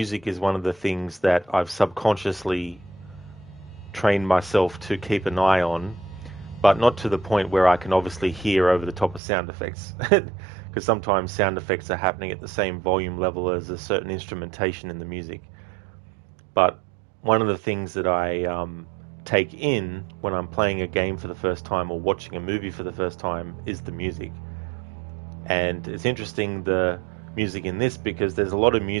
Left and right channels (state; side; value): drops out; left; at 9.2 s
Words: is one of the things that I've subconsciously trained myself to keep an eye on, but not to the point where I can obviously hear over the top of sound effects. Because sometimes sound effects are happening at the same volume level as a certain instrumentation in the music. But one of the things that I take in when I'm playing a game for the first time or watching a movie for the first time is the music. And it's interesting, the music in this, because there's a lot of